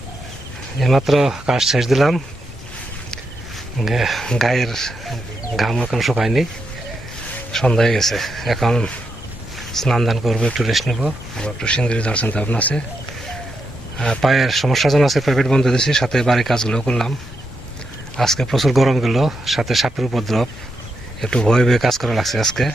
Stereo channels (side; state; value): both; normal; correlation 0.83